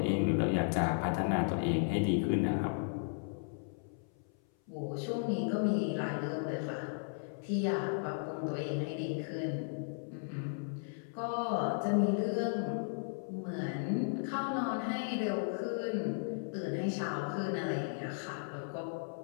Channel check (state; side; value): silent; right; 54 dB below the other